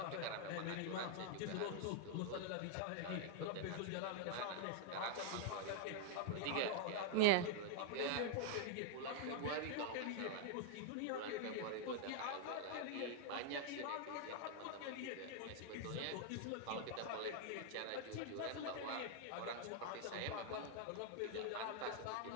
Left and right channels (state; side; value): different; both; correlation 0.00